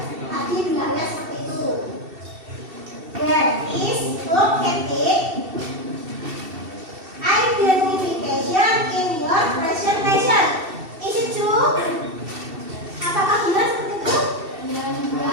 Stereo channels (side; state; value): left; late; 2.7 ms